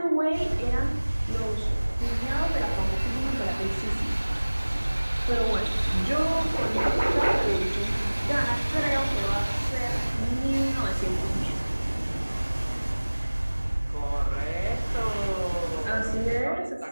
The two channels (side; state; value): both; inverted; correlation -1.00